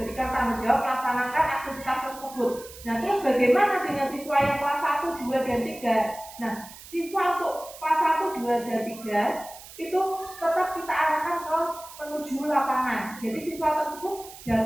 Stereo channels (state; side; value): noise; right; hiss, 17 dB below the sound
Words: tanggung jawab melaksanakan aktivitas tersebut. Nah, terus bagaimana dengan siswa yang kelas 1, 2, dan 3? Nah, siswa untuk kelas 1, 2, dan 3 itu tetap kita arahkan ke menuju lapangan. Jadi siswa tersebut